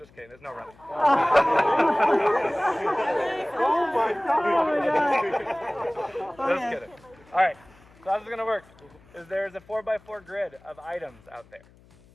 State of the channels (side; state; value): left; noise; hum, 27 dB below the sound